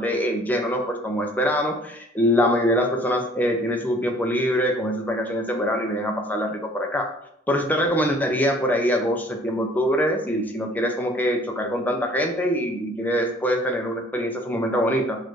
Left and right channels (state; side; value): normal; both; correlation 0.55